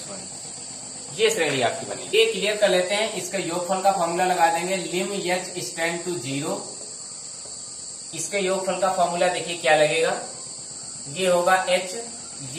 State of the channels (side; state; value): both; identical; correlation 1.00